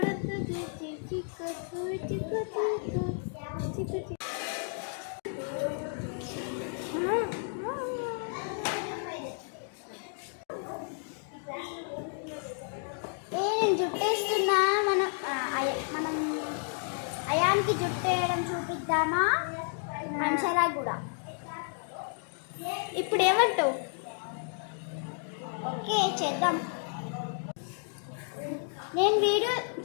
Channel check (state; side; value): silent; right; 57 dB below the other